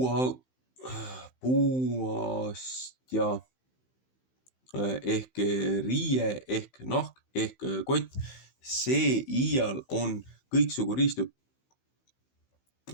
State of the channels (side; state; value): right; late; 15 ms